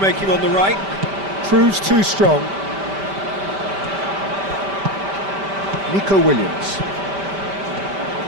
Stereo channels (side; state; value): left; late; 5.1 ms